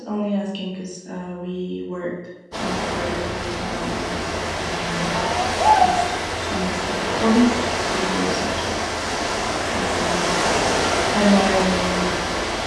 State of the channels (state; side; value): identical; both; correlation 1.00